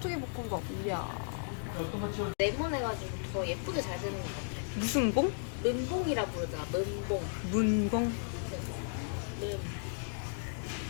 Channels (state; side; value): silent; right; digital silence